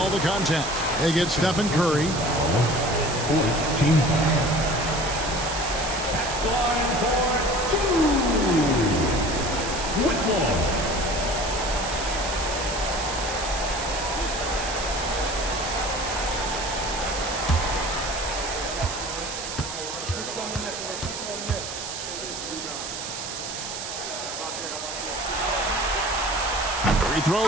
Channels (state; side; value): noise; right; hiss, 7 dB below the sound